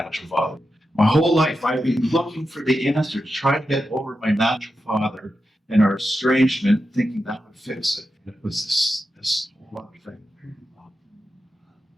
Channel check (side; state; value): both; normal; correlation 0.89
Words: father. My whole life, I've been looking for the answer to try to get over my natural father and our estrangement, thinking that would fix it. And it was this whole other thing.